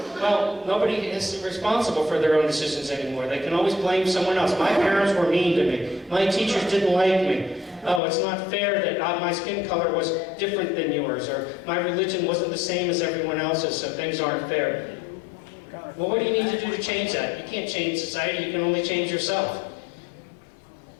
Well, nobody is responsible for their own decisions anymore. They can always blame someone else. My parents were mean to me. My teachers didn't like me. Oh, it's not fair that my skin color was different than yours, or my religion wasn't the same as everyone else's, so things aren't fair. Well, what do you need to do to change that? You can't change society, you can only change yourself.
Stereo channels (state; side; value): drops out; right; at 8.0 s